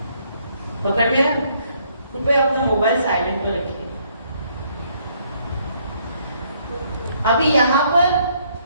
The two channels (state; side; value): inverted; both; correlation -0.68